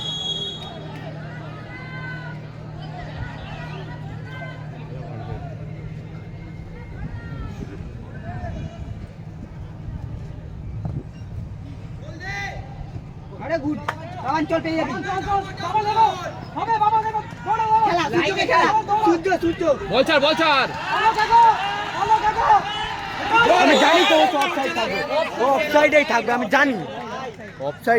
আরে গুড অঞ্চল পেয়ে যাবি খেলা সূর্যকে খেলা সূর্য বল ছাড় আমি জানি তো অফসাইড থাকবে, ও অফসাইডেই থাকবে, আমি জানি।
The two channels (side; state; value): both; identical; correlation 1.00